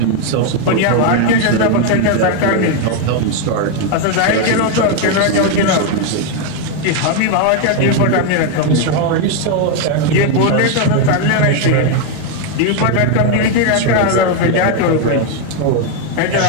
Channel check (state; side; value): different; both; correlation 0.01